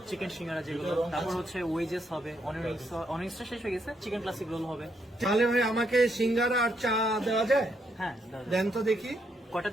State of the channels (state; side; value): normal; both; correlation 0.77